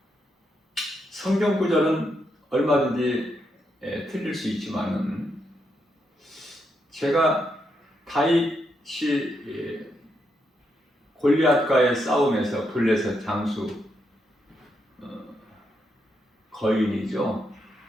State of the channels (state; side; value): normal; both; correlation 0.81